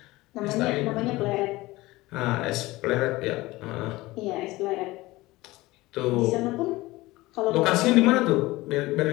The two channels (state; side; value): quieter; right; 19.7 dB